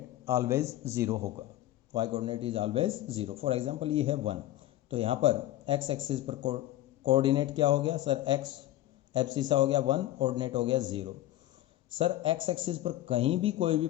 ऑलवेज 0 होगा। y coordinate is always 0। For example ये है 1, तो यहाँ पर x एक्सिस पर कोऑर्डिनेट क्या हो गया सर? x एब्सिसा हो गया 1, कोऑर्डिनेट हो गया 0। सर x एक्सिस पर कहीं भी कोई भी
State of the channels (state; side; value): quieter; right; 14.6 dB